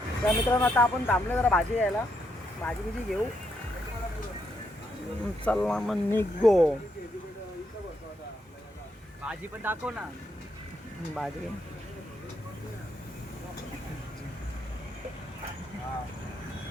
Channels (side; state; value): both; normal; correlation 0.78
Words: त्या मित्रांनो आता आपण थांबलो जरा भाजी घ्यायला, भाजी बिजी घेऊ. चला मग निघो. भाजी पण दाखव ना. भाजी